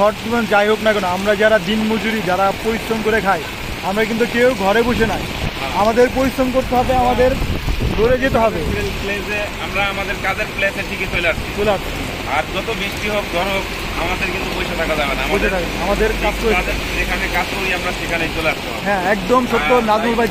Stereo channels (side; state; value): both; identical; correlation 1.00